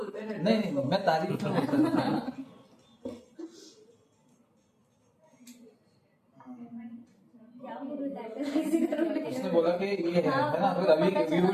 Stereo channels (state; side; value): identical; both; correlation 1.00